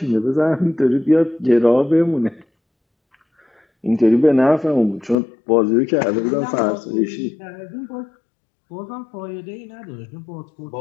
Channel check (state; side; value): drops out; right; at 5.2 s